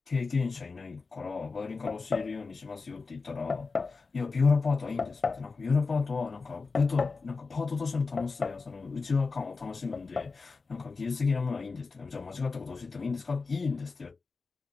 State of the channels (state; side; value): quieter; right; 4.3 dB